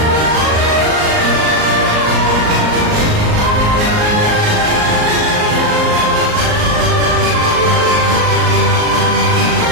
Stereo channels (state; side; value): late; left; 38 ms